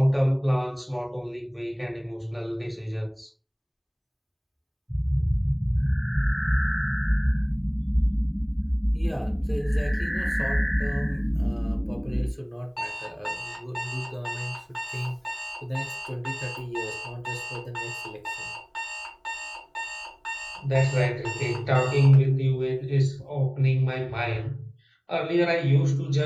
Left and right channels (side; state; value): both; identical; correlation 1.00